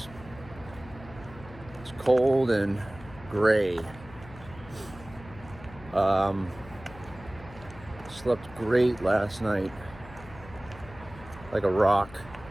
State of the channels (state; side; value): noise; left; hum, 18 dB below the sound